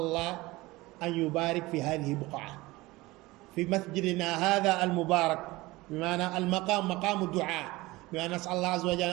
الله أن يبارك في هذه البقعة في مسجدنا هذا المبارك بمعنى المقام مقام الدعاء بمعنى نسأل الله عز وجل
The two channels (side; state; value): left; quieter; 20.4 dB